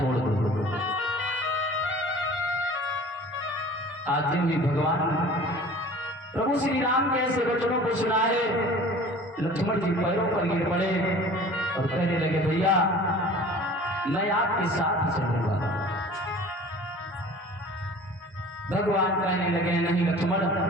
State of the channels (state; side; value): normal; both; correlation 0.44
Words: दो। आज भी भगवान प्रभु श्री राम के ऐसे वचनों को सुना है, लक्ष्मण जी पैरों पर गिर पड़े और कहने लगे, भैया मैं आपके साथ ही चलूंगा। भगवान कहने लगे, नहीं लक्ष्मण,